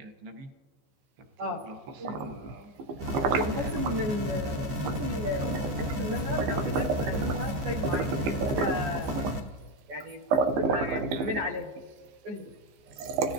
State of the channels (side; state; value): left; late; 14 ms